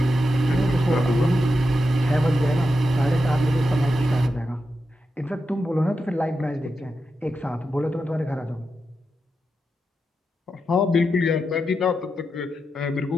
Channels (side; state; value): both; normal; correlation 0.87